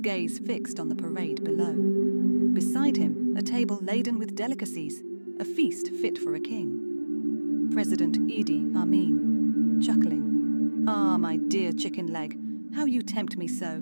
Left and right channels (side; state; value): both; inverted; correlation -1.00